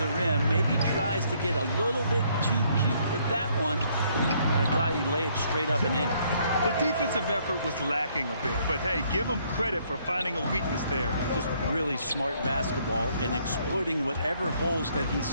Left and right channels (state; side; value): inverted; both; correlation -0.67